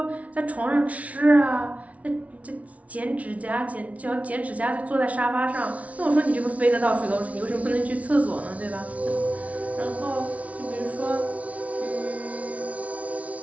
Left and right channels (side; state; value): left; late; 0.067 ms